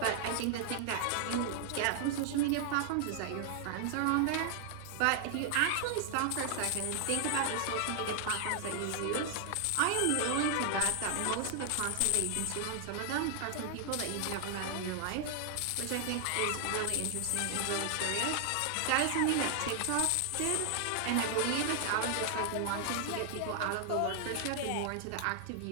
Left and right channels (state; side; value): different; both; correlation 0.00